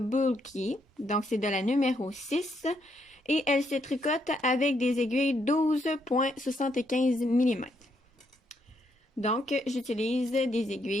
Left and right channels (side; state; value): both; normal; correlation 0.75